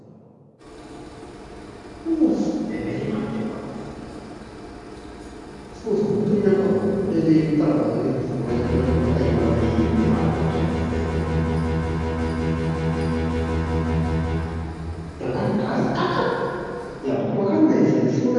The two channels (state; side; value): identical; both; correlation 1.00